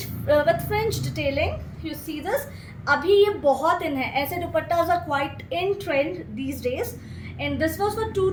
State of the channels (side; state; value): both; identical; correlation 1.00